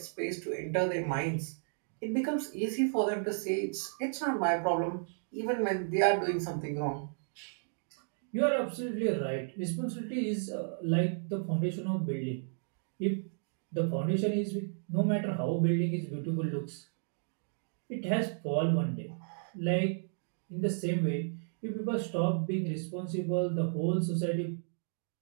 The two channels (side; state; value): left; silent; digital silence